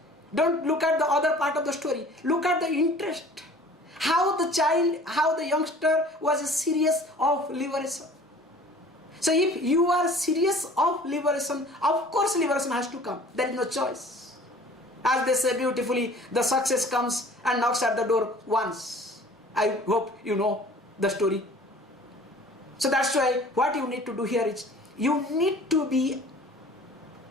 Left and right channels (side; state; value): both; normal; correlation 0.48